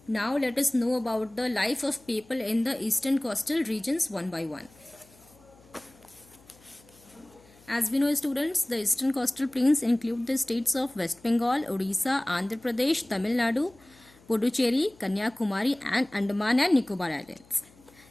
Now let us know about the life of people in the eastern coastal regions one by one. As we know, students, the eastern coastal plains include the states of West Bengal, Odisha, Andhra Pradesh, Tamil Nadu, Puducherry, Kanyakumari and Andaman and Nicobar Islands.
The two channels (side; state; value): left; noise; hum, 27 dB below the sound